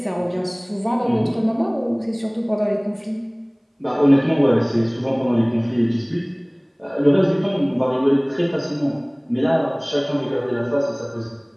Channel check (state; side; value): identical; both; correlation 1.00